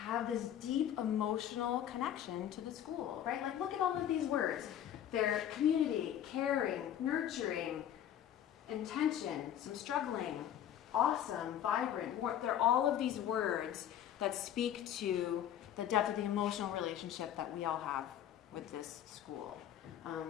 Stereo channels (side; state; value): right; quieter; 10.5 dB